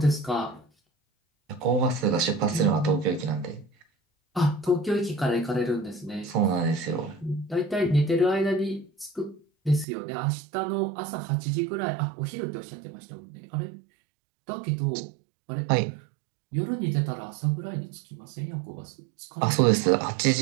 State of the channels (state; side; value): drops out; left; at 9.9 s